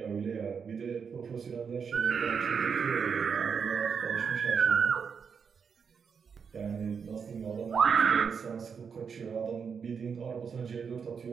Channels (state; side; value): quieter; left; 6.3 dB